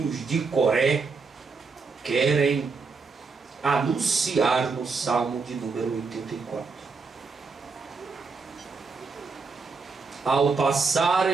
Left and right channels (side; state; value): left; quieter; 4.6 dB